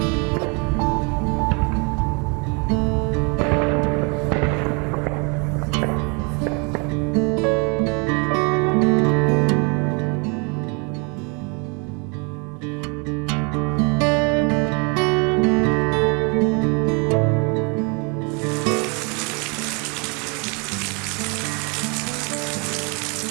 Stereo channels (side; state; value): left; quieter; 33.0 dB